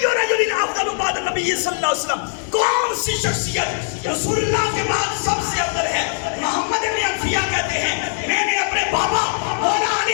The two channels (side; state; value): right; silent; digital silence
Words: رجل افضل بعد نبی صلی اللہ علیہ وسلم, کون سی شخصیت رسول اللہ کے بعد سب سے افضل ہے؟ محمد ابن حنفیہ کہتے ہیں میں نے اپنے بابا مولا